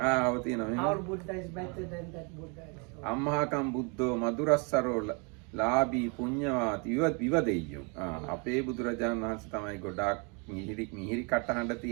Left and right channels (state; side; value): quieter; left; 33.9 dB